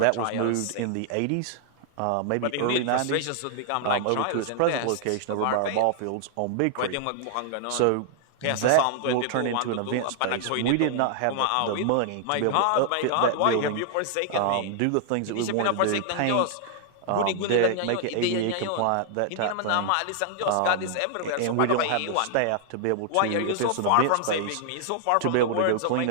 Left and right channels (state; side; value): different; both; correlation 0.00